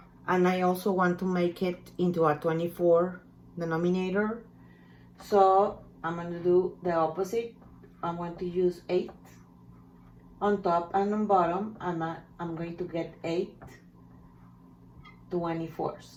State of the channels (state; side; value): identical; both; correlation 1.00